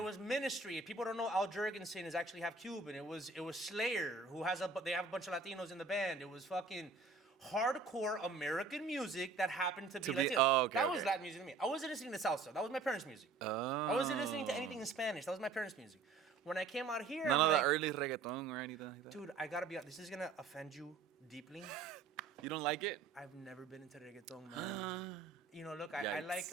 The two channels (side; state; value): left; quieter; 4.3 dB